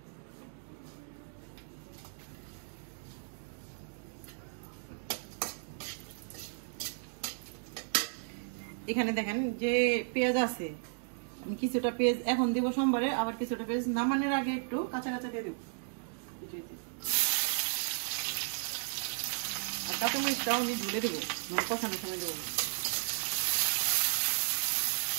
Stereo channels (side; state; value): left; silent; digital silence